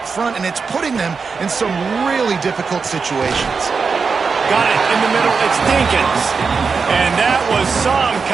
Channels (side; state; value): left; quieter; 5.1 dB